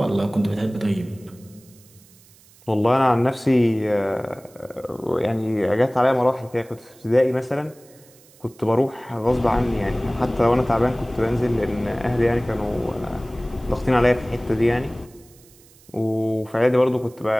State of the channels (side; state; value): right; noise; hiss, 27 dB below the sound